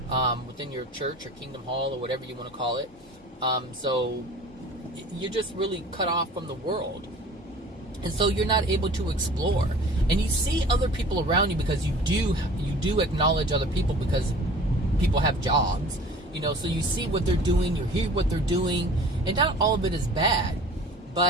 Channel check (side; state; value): both; normal; correlation 0.45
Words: within your church or kingdom hall or whatever you want to call it. So you're just really cut off from the world. And so you're not able to explore. And you see other people around you because you do acknowledge other people because people have jobs. So you see what they're doing, you hear what they're doing, and not all of it is bad,